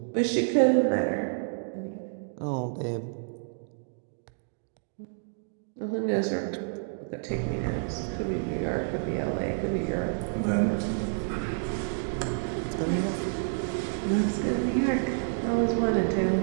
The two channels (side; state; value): left; silent; digital silence